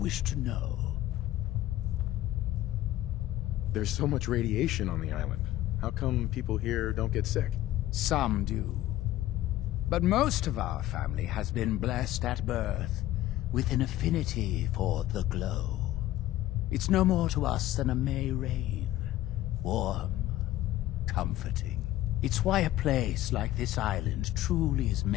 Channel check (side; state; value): right; quieter; 14.6 dB